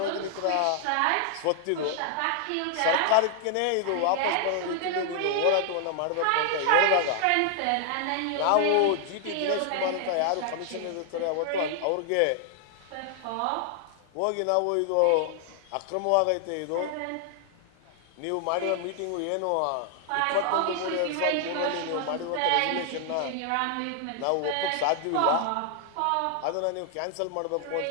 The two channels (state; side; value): different; both; correlation 0.00